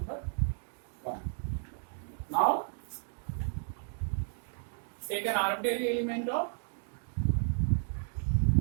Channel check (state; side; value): silent; left; 56 dB below the other